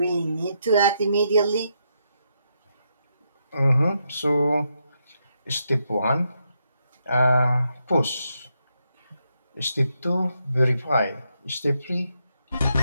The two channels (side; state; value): both; inverted; correlation -0.80